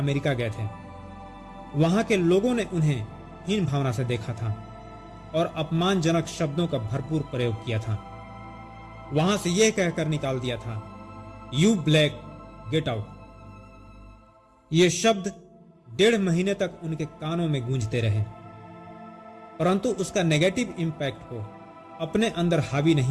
गए थे। वहां के लोगों ने उन्हें हीन भावना से देखा था और अपमानजनक शब्दों का भरपूर प्रयोग किया था। वहां से यह कहकर निकाल दिया था, यू ब्लैक गेट आउट। ये शब्द 1.5 महीने तक उनके कानों में गूंजते रहे, परंतु उसका नेगेटिव इंपैक्ट को अपने अंदर हावी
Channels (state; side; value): identical; both; correlation 1.00